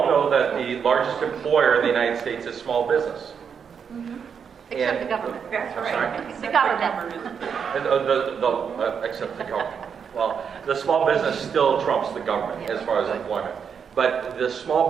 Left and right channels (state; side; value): quieter; left; 6.9 dB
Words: know that the largest employer in the United States is small business. Except And- the government. That's I'm right. sorry? The government. And, except the government. Well, the small business still trumps the government as far as employment. But the small